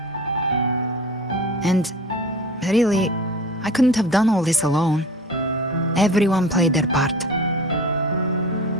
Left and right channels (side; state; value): both; normal; correlation 0.38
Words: And really, I couldn't have done all this alone. Everyone played their part.